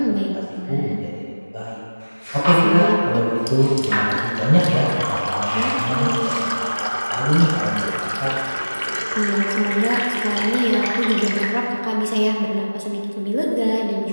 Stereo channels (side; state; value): both; inverted; correlation -1.00